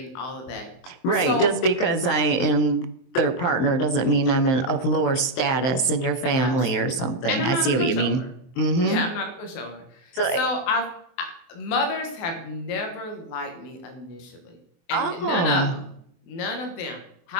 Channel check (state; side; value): late; right; 23 ms